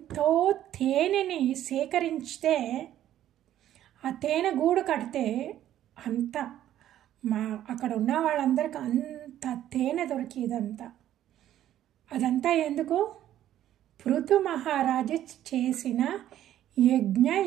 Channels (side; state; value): left; quieter; 12.1 dB